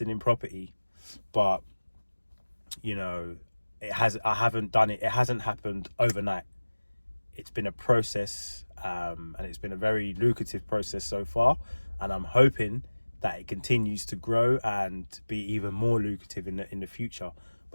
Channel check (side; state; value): both; inverted; correlation -1.00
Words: in property, but it hasn't happened overnight. It's been a process, and it's been a very lucrative process so far, and I'm hoping that it continues to grow and be even more lucrative in the future.